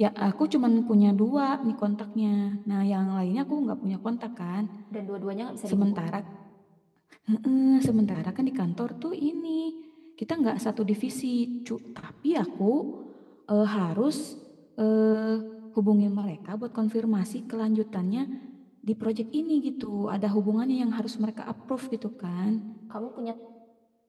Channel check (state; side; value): identical; both; correlation 1.00